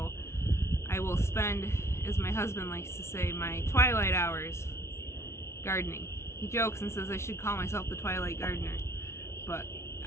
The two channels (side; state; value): right; late; 0.13 ms